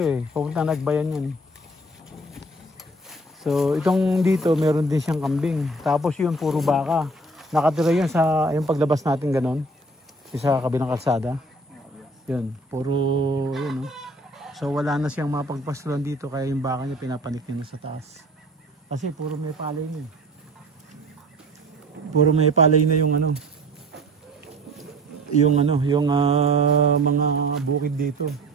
pupunta nagbayan yan. So itong dito meron din siyang kambing. Tapos yun puro baka. Nakatira yun sa yung paglabas natin ganon. Sa kabilang kalsada. Yun. Puro yun. So wala na siyang mapagpasulan dito. Kaya yung baka niya pinapanik niya na sa taas. Kasi puro may palay na Puro may palay na yung yung mga bukid dito.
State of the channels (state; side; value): normal; both; correlation 0.48